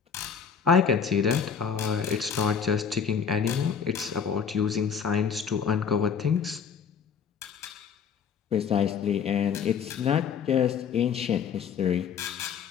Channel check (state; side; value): quieter; right; 6.9 dB